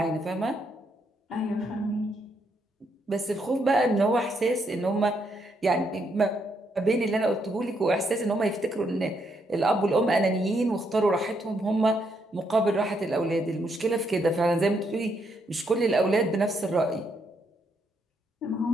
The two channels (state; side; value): normal; both; correlation 0.76